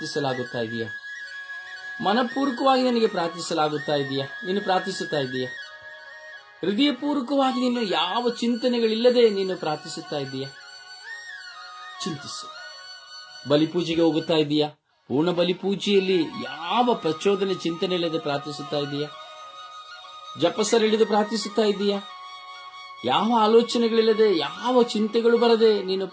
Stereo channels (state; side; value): identical; both; correlation 1.00